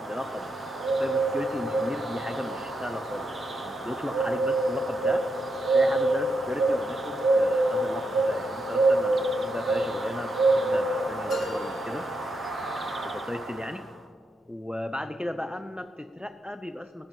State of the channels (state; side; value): normal; both; correlation 0.82